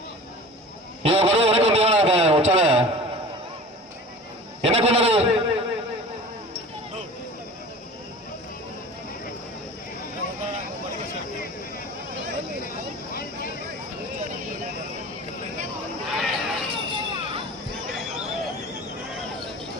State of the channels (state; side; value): normal; both; correlation 0.39